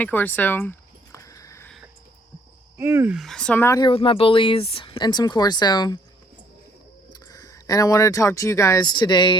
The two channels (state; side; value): normal; both; correlation 0.63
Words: Corso. So I'm out here with my bullies and some Corso. And I wanted to talk to you guys